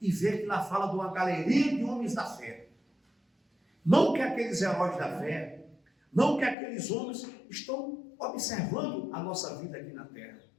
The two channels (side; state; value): right; drops out; at 6.6 s